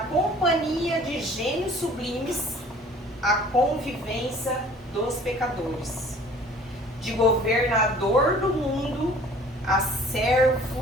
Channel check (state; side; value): normal; both; correlation 0.51